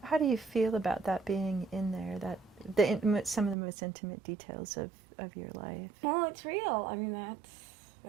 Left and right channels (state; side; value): drops out; left; at 3.6 s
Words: How do you feel about that being in there, some of the most intimate details of your life? Well, it's real. I mean,